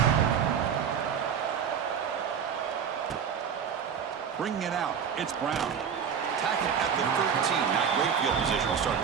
Bringing it out, it's Brown. Tackle at the 13, not great field position to start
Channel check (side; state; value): left; quieter; 7.5 dB